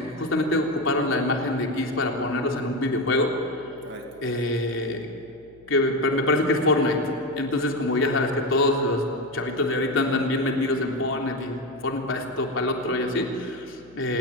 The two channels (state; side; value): noise; left; hum, 27 dB below the sound